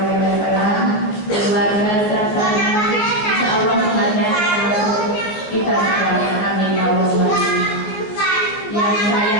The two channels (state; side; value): late; right; 14 ms